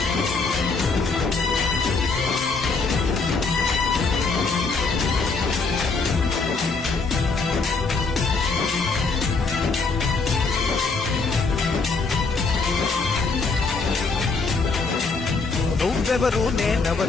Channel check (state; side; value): quieter; right; 4.2 dB